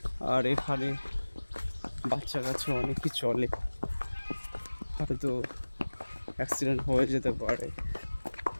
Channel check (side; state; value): both; inverted; correlation -1.00